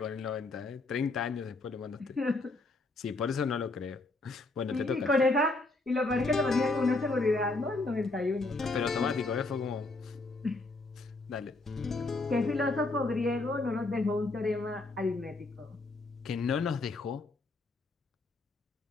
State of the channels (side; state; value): right; quieter; 3.1 dB